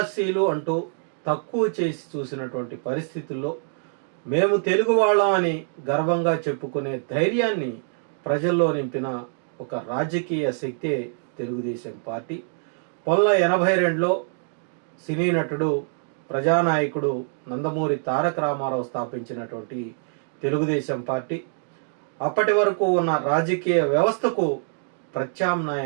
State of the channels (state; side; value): silent; left; 61 dB below the other